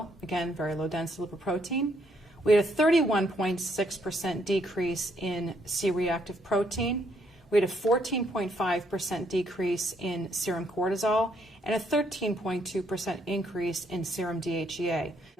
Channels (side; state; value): both; normal; correlation 0.72